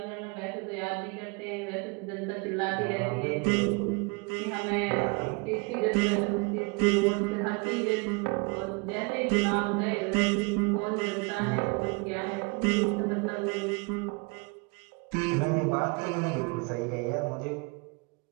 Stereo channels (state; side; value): quieter; left; 30.0 dB